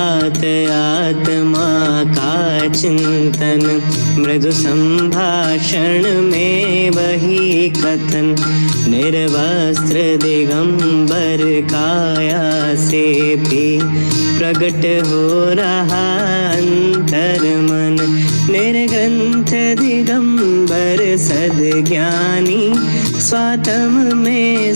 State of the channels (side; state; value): both; inverted; correlation -1.00